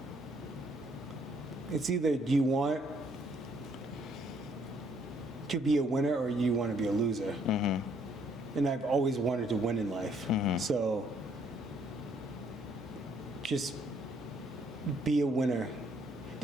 It's either do you want to be a winner or you want to be a loser. And I've always wanted to win in life. So just be a winner.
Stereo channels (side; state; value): both; normal; correlation 0.67